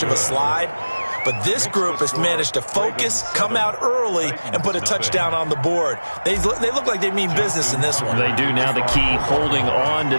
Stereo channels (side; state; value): both; inverted; correlation -1.00